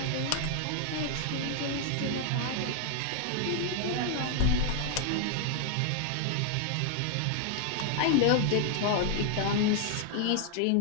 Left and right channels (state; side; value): different; both; correlation 0.00